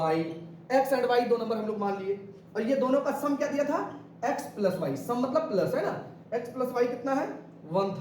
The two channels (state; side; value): identical; both; correlation 1.00